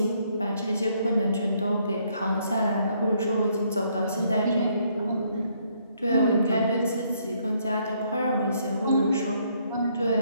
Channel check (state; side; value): inverted; both; correlation -0.70